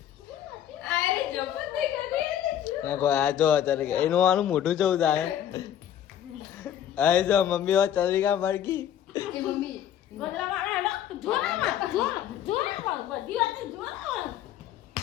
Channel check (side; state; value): right; quieter; 10.5 dB